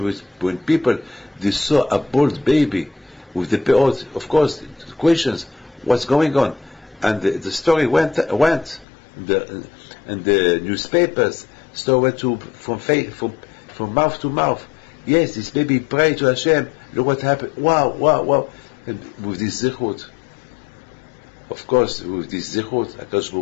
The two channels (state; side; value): drops out; right; at 8.8 s